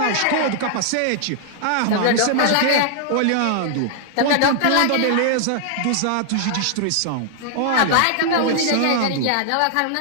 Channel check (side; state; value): both; different; correlation 0.00